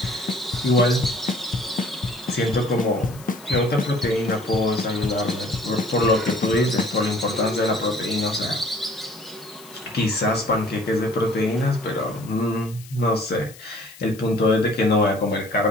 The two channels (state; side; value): noise; left; hiss, 20 dB below the sound